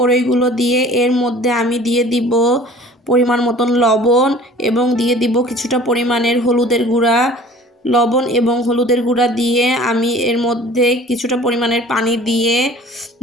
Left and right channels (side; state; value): both; normal; correlation 0.47